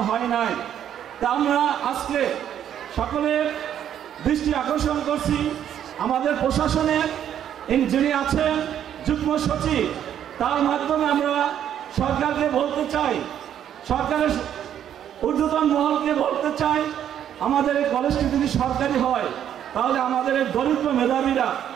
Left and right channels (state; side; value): quieter; left; 10.0 dB